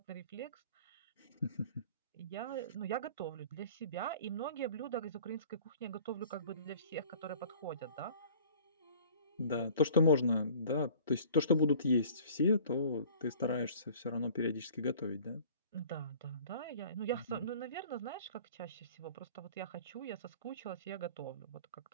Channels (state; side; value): inverted; both; correlation -0.48